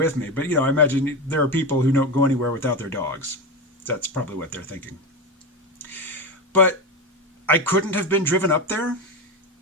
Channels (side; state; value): both; normal; correlation 0.18